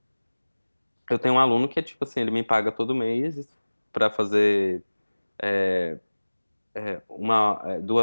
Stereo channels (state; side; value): inverted; both; correlation -1.00